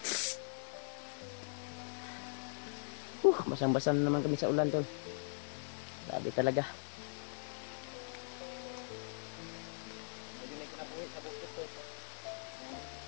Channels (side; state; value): right; silent; digital silence